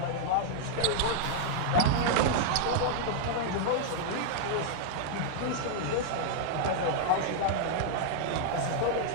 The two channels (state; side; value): different; both; correlation -0.01